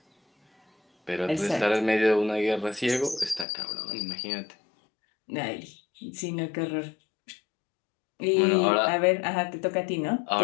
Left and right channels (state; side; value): drops out; right; at 3.5 s